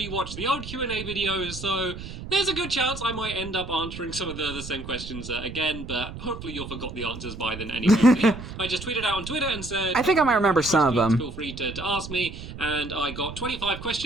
the old Q&A videos, so there's a good chance I might end up answering some of the same questions again, but hopefully you'll forgot the answers by then anyway. I just tweeted out on Twitter and said, I think I might remember some of them. Feel free to ask me, and I got 25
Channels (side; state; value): right; noise; rumble, 11 dB below the sound